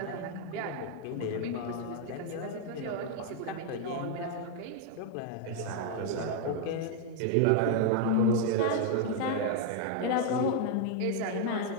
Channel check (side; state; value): both; different; correlation 0.00